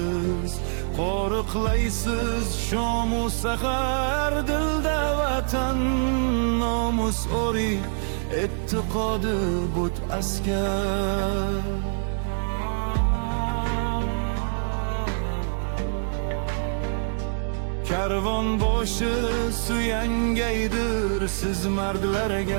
Qo'riqlaysiz shomu sahar, dilda vatan nomus ori, e'tiqodi but askar. Karvon boshi suyangaydir siz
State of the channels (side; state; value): left; silent; digital silence